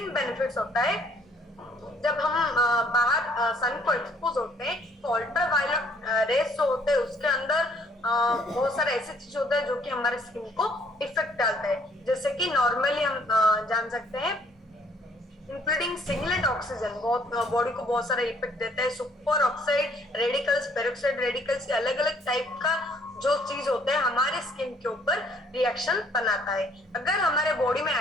बेनिफिट्स होता है। जब हम बाहर सन को एक्सपोज होते हैं तो अल्ट्रावायलेट रेस जो होते हैं उसके अंदर बहुत सारे ऐसे चीज होते हैं जो कि हमारे स्किन को इफेक्ट डालता है, जैसे कि नॉर्मली हम जान सकते हैं इंक्लूडिंग सिंगलेट ऑक्सीजन बहुत बॉडी को बहुत सारा इफेक्ट देता है। Super oxide radicals, peroxide radicals, अलग अलग टाइप का जो चीज होता है हमारे स्किन के ऊपर रिएक्शन बनाता है। अगर हमारे बॉडी में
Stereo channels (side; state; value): both; normal; correlation 0.62